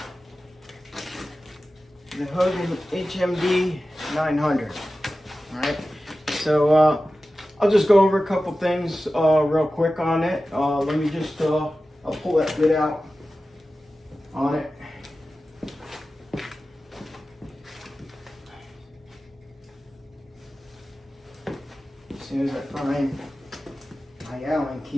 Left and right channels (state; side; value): normal; both; correlation 0.95